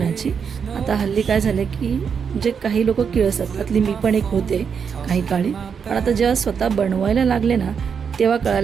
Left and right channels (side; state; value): left; quieter; 6.6 dB